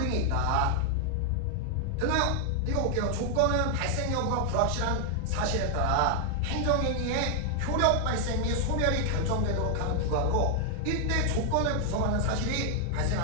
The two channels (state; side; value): different; both; correlation 0.00